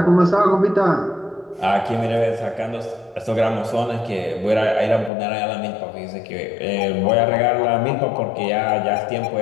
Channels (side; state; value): right; drops out; at 5.1 s